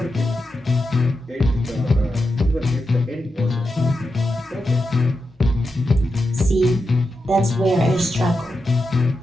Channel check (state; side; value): normal; both; correlation 0.88